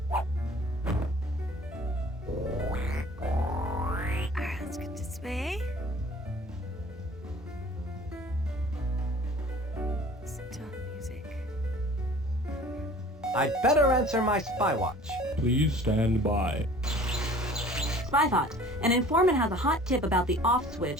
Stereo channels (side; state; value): both; normal; correlation 0.48